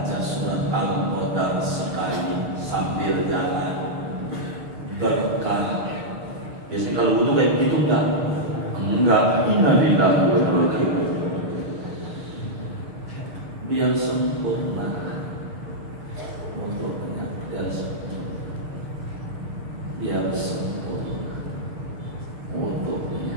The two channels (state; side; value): late; left; 6.6 ms